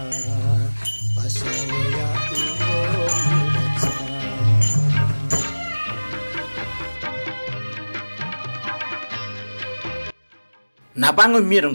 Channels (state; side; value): inverted; both; correlation -1.00